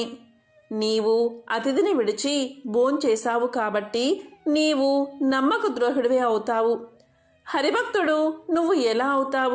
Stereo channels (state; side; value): identical; both; correlation 1.00